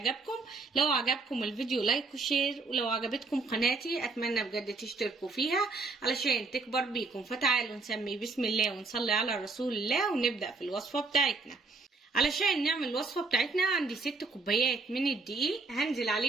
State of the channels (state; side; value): quieter; left; 3.8 dB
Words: لو عجبكم الفيديو لايك وشير، ولو عجبتكم قناتي أتمنى بجد تشتركوا فيها علشان تكبر بيكم. فتعالوا نسمي بسم الله ونصلي على رسول الله ونبدأ في الوصفة بتاعتنا. علشان نعمل الوصفة بتاعتنا عندي 6 كوبايات من الدقيق، هنزل